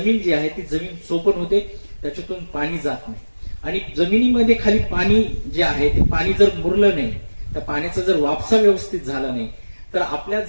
जी आहे ती जमीन चोपण होते, त्याच्यातून पाणी जात नाही. आणि जमिनीमध्ये खाली पाणी जे आहे ते पाणी जर मुरलं नाही, त्या पाण्याचा जर वापसा व्यवस्थित झाला नाही, तर आपल्या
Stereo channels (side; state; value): both; inverted; correlation -1.00